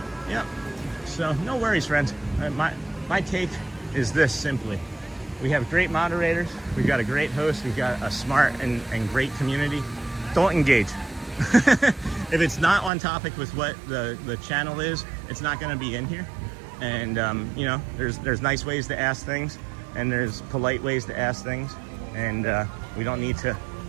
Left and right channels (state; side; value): drops out; left; at 12.9 s